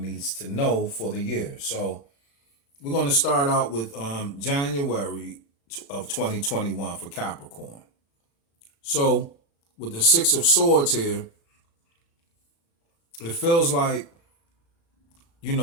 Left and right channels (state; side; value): late; right; 36 ms